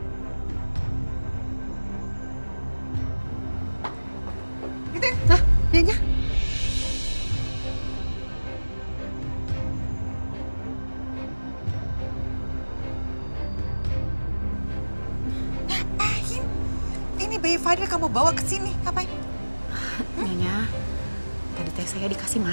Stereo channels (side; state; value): both; inverted; correlation -1.00